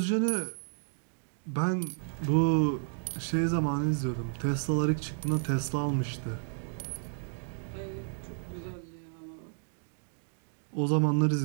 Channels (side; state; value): left; silent; digital silence